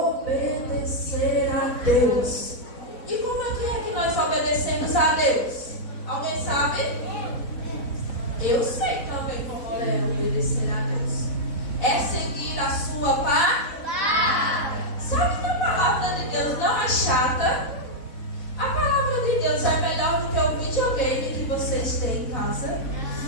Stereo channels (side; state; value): right; late; 4.0 ms